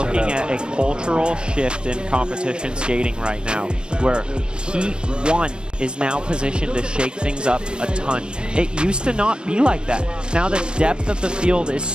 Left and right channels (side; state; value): left; late; 0.053 ms